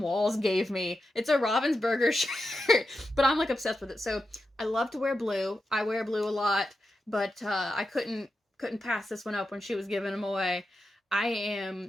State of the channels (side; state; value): both; normal; correlation 0.89